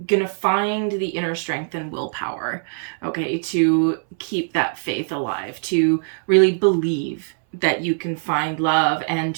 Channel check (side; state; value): left; silent; 62 dB below the other